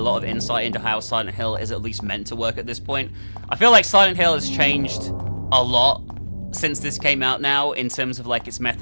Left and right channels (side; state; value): both; inverted; correlation -1.00